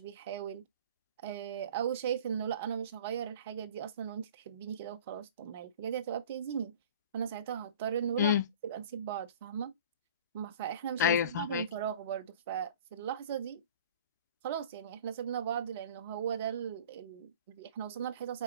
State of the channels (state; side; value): inverted; both; correlation -0.42